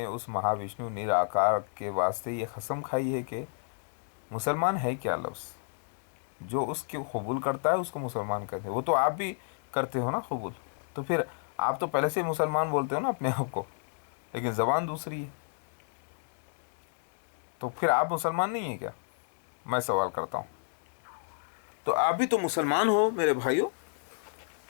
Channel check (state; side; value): silent; right; digital silence